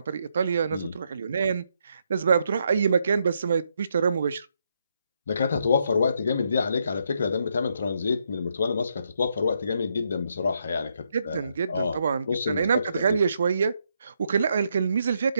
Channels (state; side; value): inverted; both; correlation -0.77